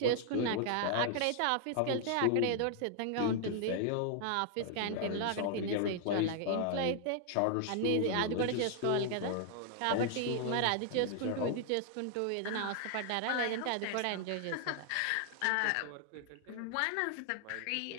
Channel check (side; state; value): both; different; correlation 0.00